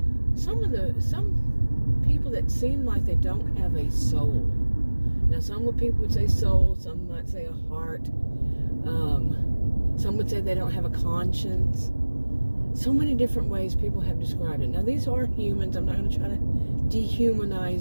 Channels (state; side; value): inverted; both; correlation -1.00